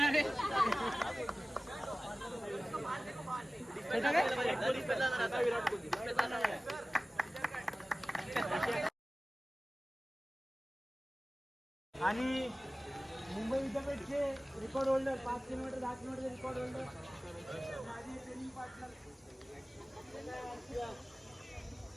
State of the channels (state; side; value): normal; both; correlation 0.97